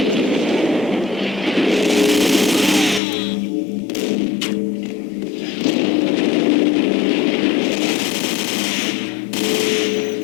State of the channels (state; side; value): drops out; right; at 3.0 s